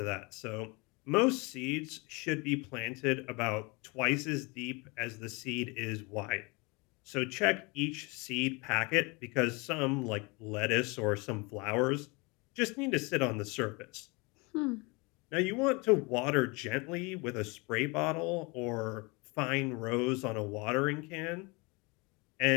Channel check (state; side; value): quieter; right; 27.9 dB